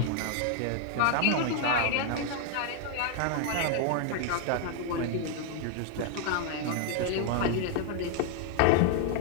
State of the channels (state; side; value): different; both; correlation 0.00